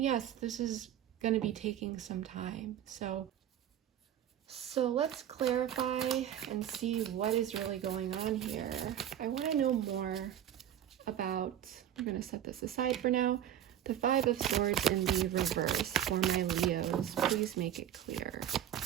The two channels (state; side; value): quieter; left; 10.7 dB